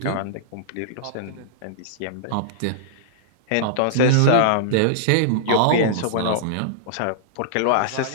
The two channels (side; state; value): both; different; correlation -0.02